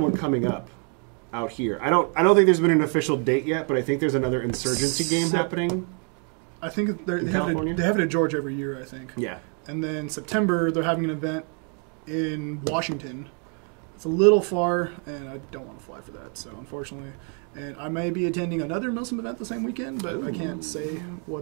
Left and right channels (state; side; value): quieter; left; 38.2 dB